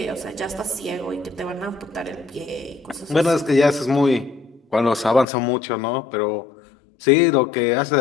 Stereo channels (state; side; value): drops out; right; at 5.2 s